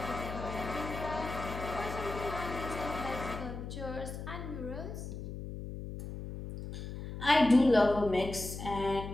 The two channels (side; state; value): left; noise; hum, 8 dB below the sound